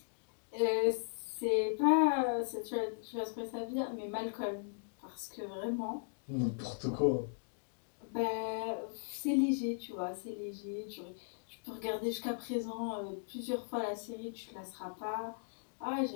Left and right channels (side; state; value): right; silent; digital silence